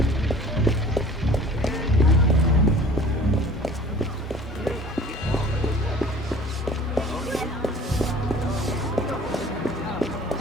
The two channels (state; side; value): normal; both; correlation 0.47